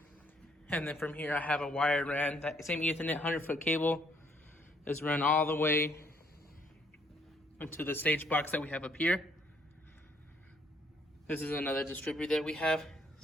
And then from here I have a wire ran, that same Ethernet 100-foot cable is run all the way into the stage box that we have up here. This is another distributor that we have.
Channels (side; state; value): both; normal; correlation 0.67